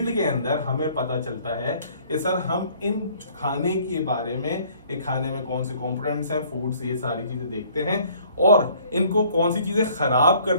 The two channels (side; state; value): both; inverted; correlation -0.57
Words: के अंदर हमें पता चलता है कि सर हम इन खाने के बारे में, ये खाने में कौन से कंपोनेंट्स हैं, फूड्स, ये सारी चीजें देखते हैं और इनको कौन सी चीजें खराब कर